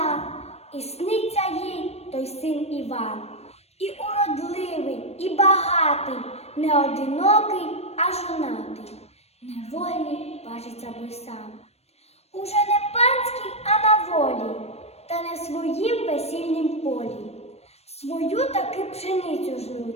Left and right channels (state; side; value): late; right; 0.31 ms